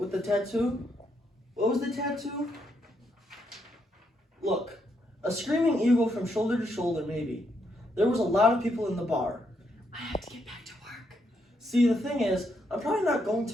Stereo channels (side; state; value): both; normal; correlation 0.77